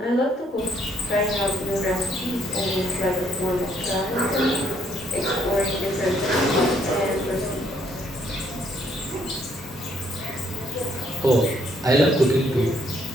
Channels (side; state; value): both; normal; correlation 0.68